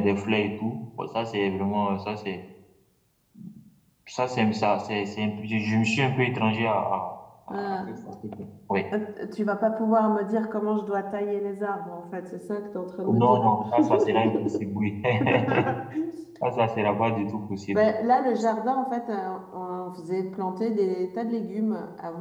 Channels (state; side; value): identical; both; correlation 1.00